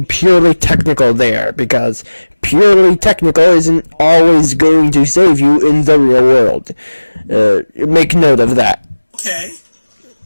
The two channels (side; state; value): both; inverted; correlation -1.00